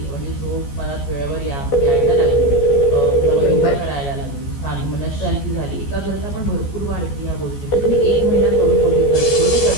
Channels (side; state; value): right; late; 14 ms